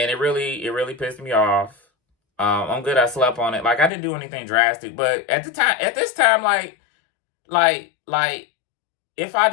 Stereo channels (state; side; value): drops out; right; at 3.9 s